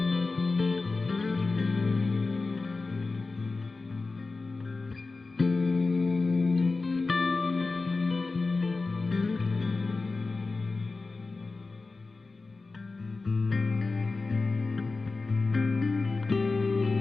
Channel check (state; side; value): quieter; right; 3.7 dB